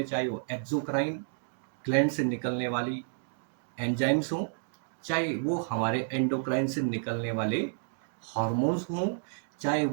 चाहे वो एक्सोक्राइन ग्लैंड से निकलने वाली एंजाइम्स हों, चाहे वो हमारे एंडोक्राइन से निकलने वाले हार्मोन्स हों, चाहे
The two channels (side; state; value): left; silent; digital silence